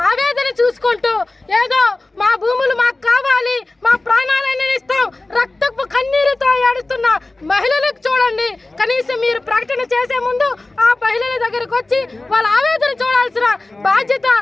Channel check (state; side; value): quieter; right; 3.0 dB